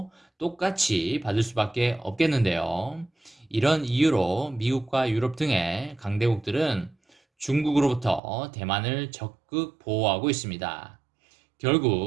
똑같이 받을 수밖에 없겠는데요. 이런 이유로 미국과 유럽 등의 강대국들은 중국으로부터 대만을 적극 보호하고 있습니다.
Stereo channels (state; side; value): drops out; left; at 8.2 s